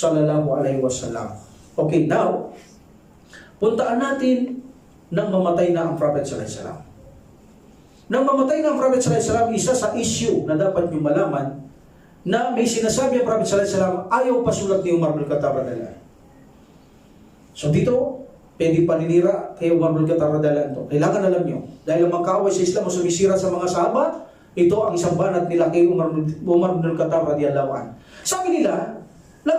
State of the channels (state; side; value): identical; both; correlation 1.00